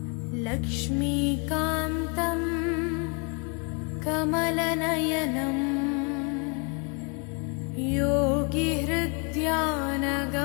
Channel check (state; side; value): quieter; right; 34.0 dB